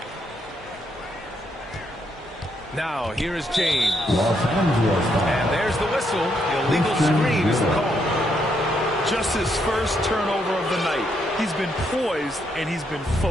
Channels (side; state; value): both; normal; correlation 0.76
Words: Now, here is James. And there's the whistle. Illegal screen is the call. Just his first turnover of the night. He's been poised and he's been